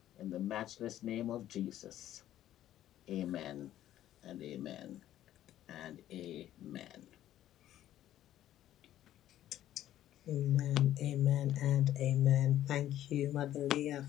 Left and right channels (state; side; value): quieter; right; 12.6 dB